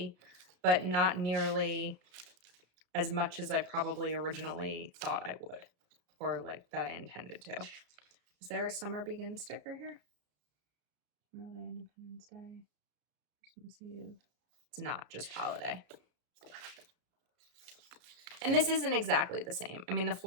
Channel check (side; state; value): left; late; 33 ms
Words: but not nearly as much as I probably originally thought I would, or like that I intended to. Is there a Summer Begin sticker here? Memorial Day, Independence Day, Christmas Eve. It's not just holiday. And this isn't exactly the same. I mean, the